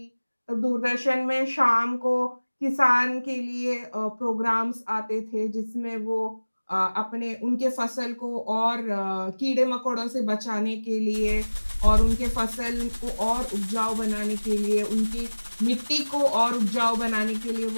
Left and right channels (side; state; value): both; inverted; correlation -1.00